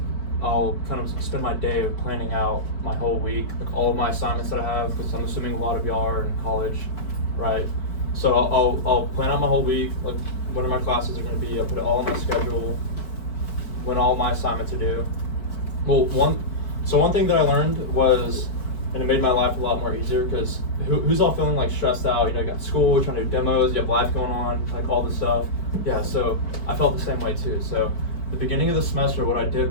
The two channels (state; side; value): late; right; 4.6 ms